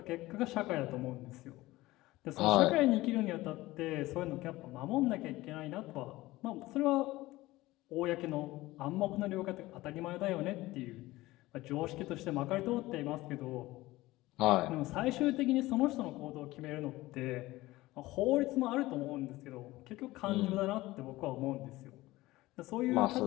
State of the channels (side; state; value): right; quieter; 18.4 dB